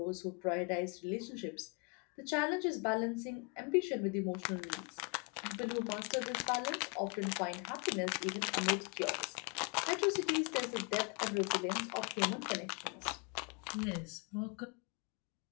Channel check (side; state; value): right; quieter; 33.5 dB